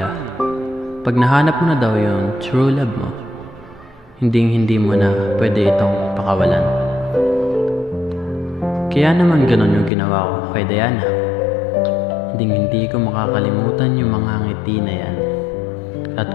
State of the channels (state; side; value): drops out; right; at 9.9 s